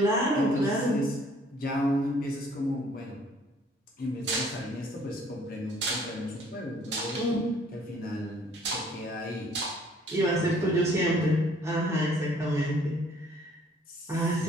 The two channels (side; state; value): both; normal; correlation 0.59